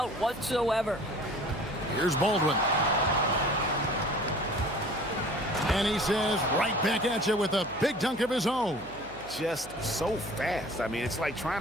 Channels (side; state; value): right; noise; hum, 19 dB below the sound